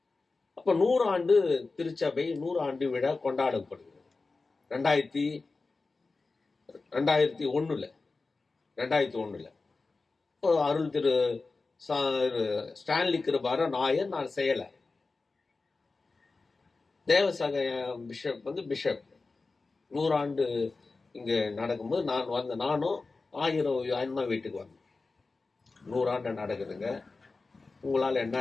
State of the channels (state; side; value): quieter; right; 3.8 dB